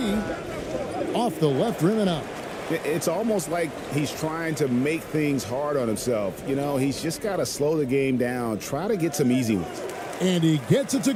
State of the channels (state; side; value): identical; both; correlation 1.00